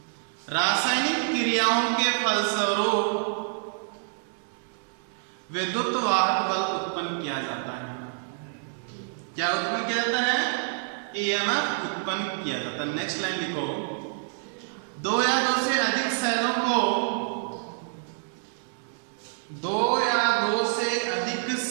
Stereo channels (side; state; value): left; silent; digital silence